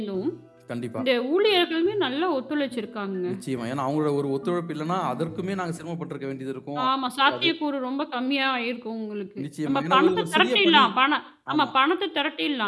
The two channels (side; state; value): both; identical; correlation 1.00